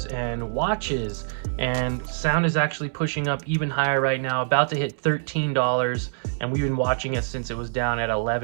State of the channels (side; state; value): left; silent; 62 dB below the other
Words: and watches. And sound is actually pushing up even higher right now, about to hit $13. And we've been watching it since it was down at